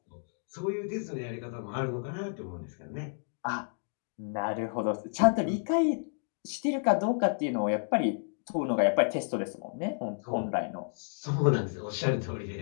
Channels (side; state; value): right; silent; digital silence